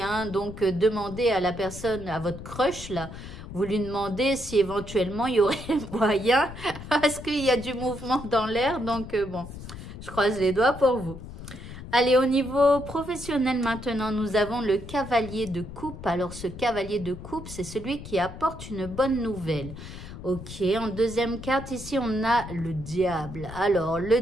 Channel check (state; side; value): noise; left; rumble, 12 dB below the sound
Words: Hein. Donc, demandez à la personne, à votre crush, là, vous lui demandez si éventuellement il y aurait moyen, parce qu'il y a du mouvement dans l'air. Donc bon, je croise les doigts pour vous. Allez, au niveau professionnel maintenant, nous avons le cavalier de coupe. Alors, ce cavalier de coupe, c'est celui qui apporte une bonne nouvelle. Ok, en deuxième carte, ici, on a le diable. Alors, le